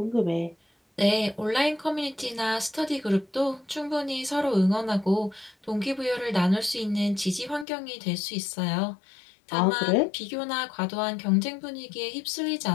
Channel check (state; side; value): drops out; right; at 7.7 s